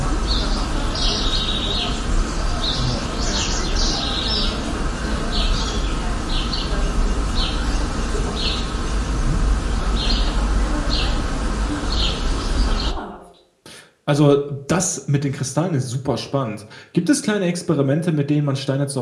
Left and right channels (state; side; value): identical; both; correlation 1.00